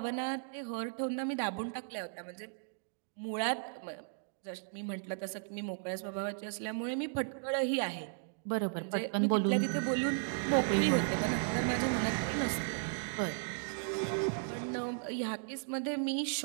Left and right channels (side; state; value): left; silent; digital silence